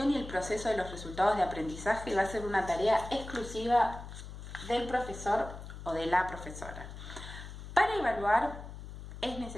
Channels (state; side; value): noise; left; hum, 12 dB below the sound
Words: y el proceso de los resultados de aprendizaje va a ser una tarea exclusiva del profesor o de la profesora. Para evaluar es